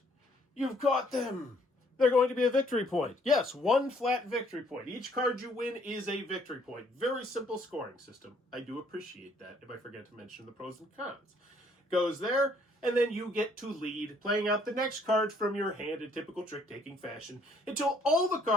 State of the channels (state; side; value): normal; both; correlation 0.64